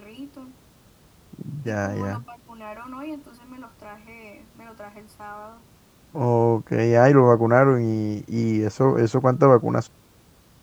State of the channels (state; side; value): identical; both; correlation 1.00